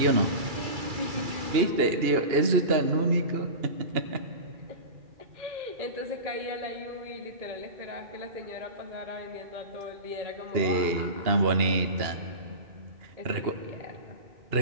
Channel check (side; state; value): left; late; 2.8 ms